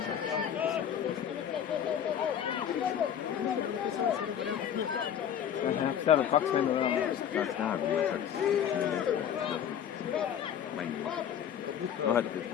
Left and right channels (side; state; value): right; quieter; 9.2 dB